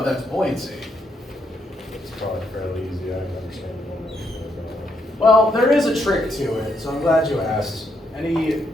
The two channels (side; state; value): both; normal; correlation 0.76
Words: that's buoyancy. It's probably fairly easy. I can understand the one. Well, there is a trick to it, so I'm glad you asked. Any